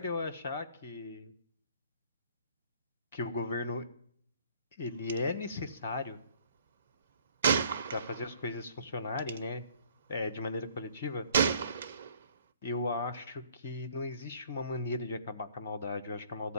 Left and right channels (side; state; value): both; inverted; correlation -0.57